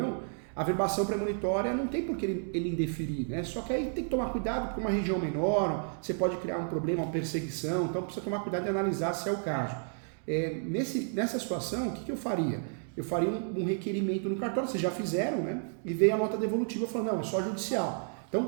a verbação premonitória não tem por que ele indeferir, né? Só que aí tem que tomar cuidado, porque uma região menor, você pode criar um problema, uma perseguição, então precisa tomar cuidado de analisar se é o caso. Nessa situação, o que eu faria? Eu faria um requerimento no cartório, vocês já fizeram, né? E veio a nota devolutiva falando, não, é só judicial. Então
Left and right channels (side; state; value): left; silent; 57 dB below the other